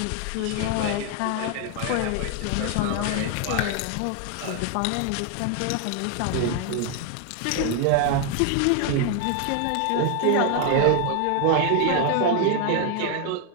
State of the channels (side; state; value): both; different; correlation 0.00